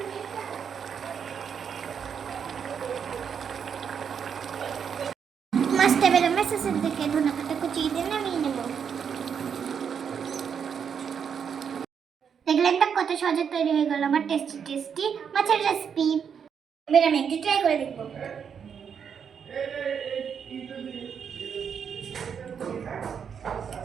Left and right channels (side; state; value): left; quieter; 7.2 dB